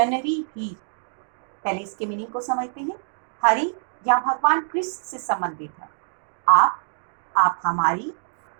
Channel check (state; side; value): silent; left; digital silence